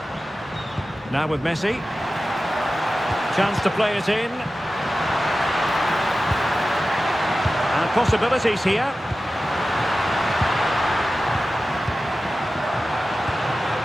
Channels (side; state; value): both; normal; correlation 0.94